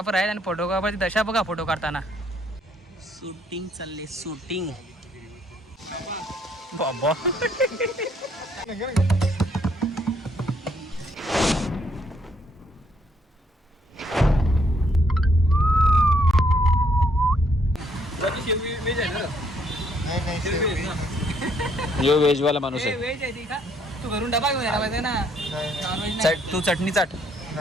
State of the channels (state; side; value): normal; both; correlation 0.69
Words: आहेत आणि फोटोग्राफरची दशा बघा फोटो काढताना. शूटिंग चालले शूटिंग. बाबा जो व्हेज वाला माणूस आहे. व्हेज आहे ती का? तू घरून डबा घेऊन यायला पाहिजे ना. तू चटणी चाट.